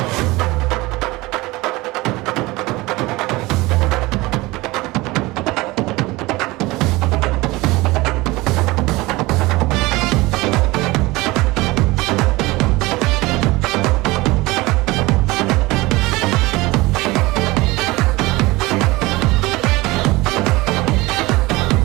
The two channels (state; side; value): quieter; left; 21.2 dB